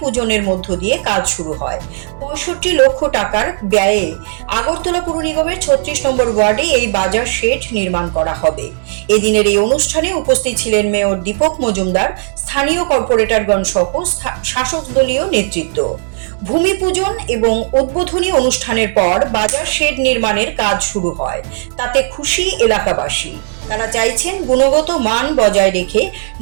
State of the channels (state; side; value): silent; left; digital silence